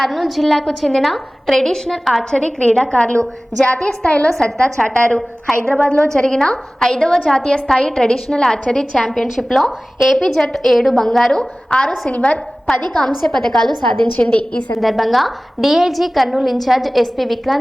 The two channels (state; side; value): normal; both; correlation 0.98